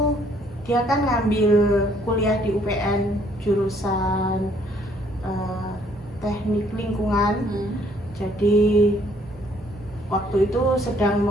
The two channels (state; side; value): normal; both; correlation 0.64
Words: dia kan ngambil kuliah di UPN jurusan teknik lingkungan. Jadi waktu itu sedang